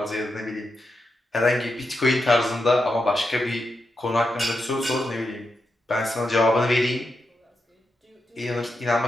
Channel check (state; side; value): normal; both; correlation 0.86